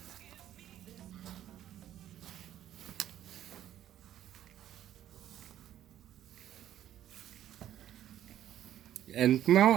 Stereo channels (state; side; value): quieter; left; 11.7 dB